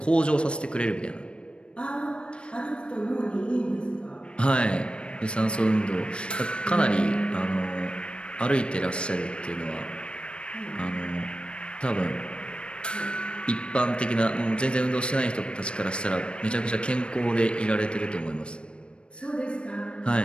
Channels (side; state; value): right; late; 0.057 ms